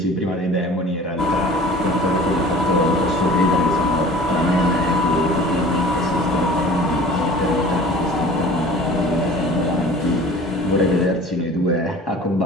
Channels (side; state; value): both; normal; correlation 0.44